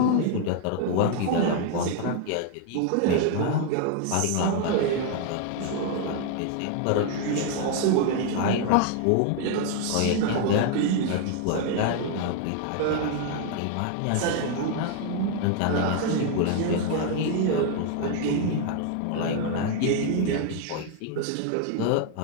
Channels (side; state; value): both; different; correlation 0.00